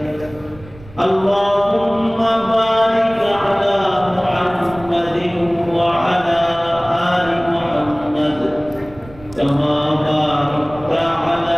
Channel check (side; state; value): right; noise; rumble, 21 dB below the sound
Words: اللهم بارك على محمد وعلى آل محمد كما باركت